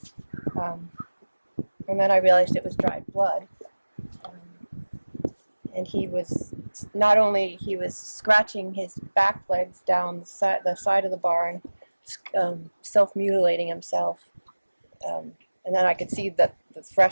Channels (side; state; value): both; inverted; correlation -1.00